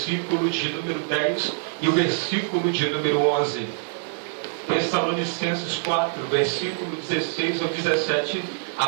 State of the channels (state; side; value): silent; left; digital silence